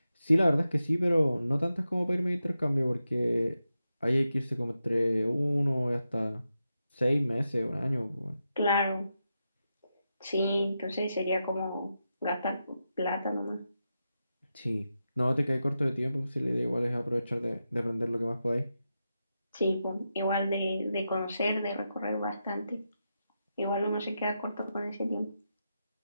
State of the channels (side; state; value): both; inverted; correlation -0.88